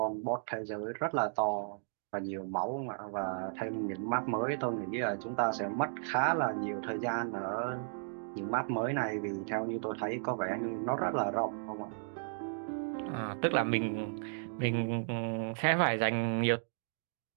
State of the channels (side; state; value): left; silent; digital silence